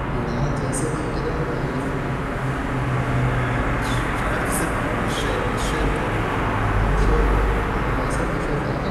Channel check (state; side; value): identical; both; correlation 1.00